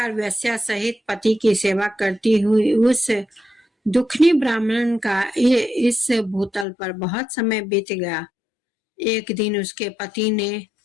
वेश्या सहित पति की सेवा करती हुई उस दुखनी ब्राह्मण का इस भूतल पर बहुत समय बीत गया। एक दिन उसके पति ने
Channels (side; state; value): right; drops out; at 6.7 s